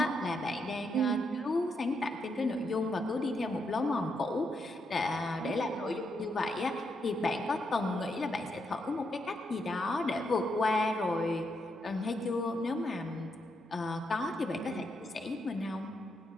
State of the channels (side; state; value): both; normal; correlation 0.80